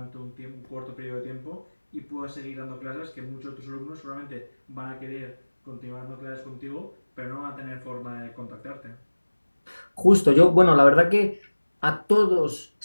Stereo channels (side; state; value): both; inverted; correlation -1.00